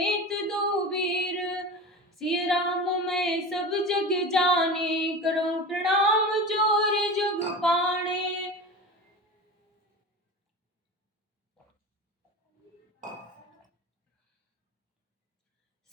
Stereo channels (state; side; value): normal; both; correlation 0.30